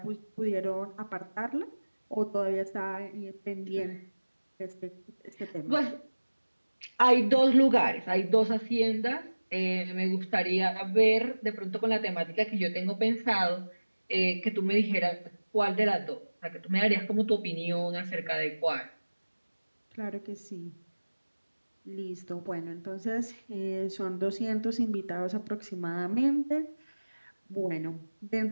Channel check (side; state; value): both; inverted; correlation -1.00